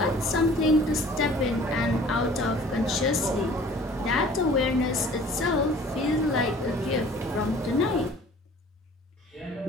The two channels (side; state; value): both; normal; correlation 0.50